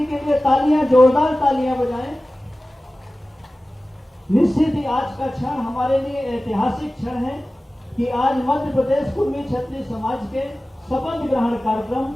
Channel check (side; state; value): both; normal; correlation 0.96